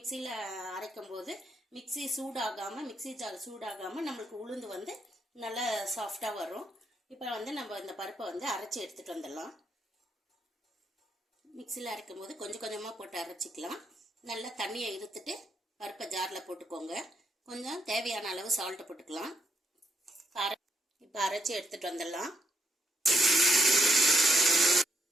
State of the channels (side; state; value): both; normal; correlation 0.76